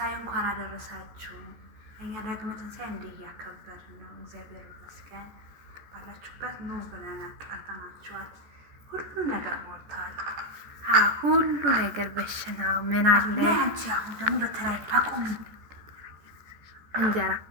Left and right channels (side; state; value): left; late; 14 ms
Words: እንኳን አደረሳችሁ። እኛ ዳግመ ትንሣኤ እንዲህ እያከበርን ነው። እግዚአብሔር ይመስገን። ባላችሁበት ኑ ብለን አጣጣማችኋል። ሁሉ ነገር ሞልተዋል። ሁሉ ነገር በሽናው ምን አለ። አንቺ አሁን ደግሞ በተለይ ታቆም እንጀራ